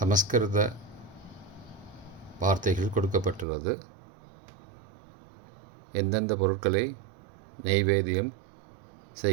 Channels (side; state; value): left; drops out; at 3.5 s